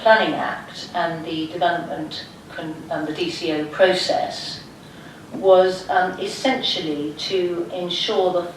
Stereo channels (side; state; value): both; identical; correlation 1.00